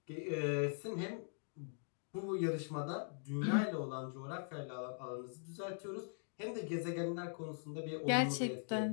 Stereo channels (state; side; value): silent; right; digital silence